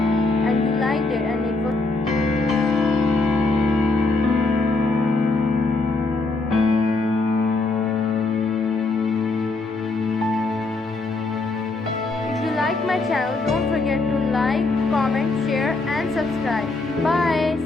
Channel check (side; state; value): right; quieter; 3.5 dB